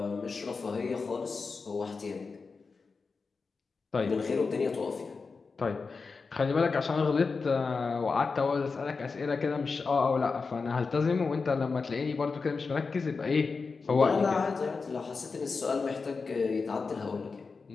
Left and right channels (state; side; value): quieter; right; 4.6 dB